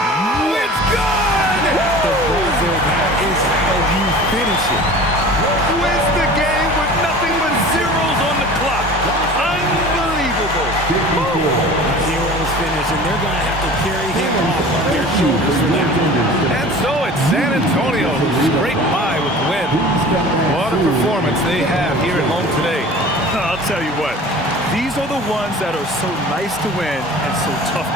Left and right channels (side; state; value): both; normal; correlation 0.41